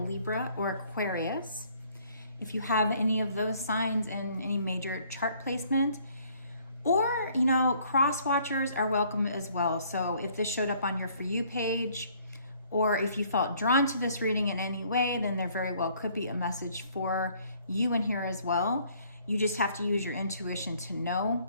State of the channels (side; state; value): both; inverted; correlation -0.61